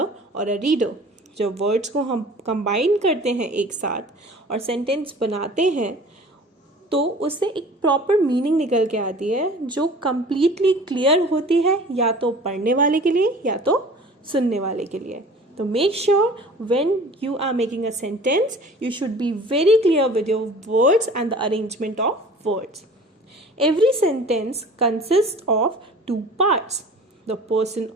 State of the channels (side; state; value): both; normal; correlation 0.45